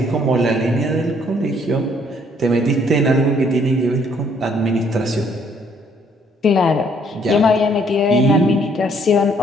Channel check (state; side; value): normal; both; correlation 0.65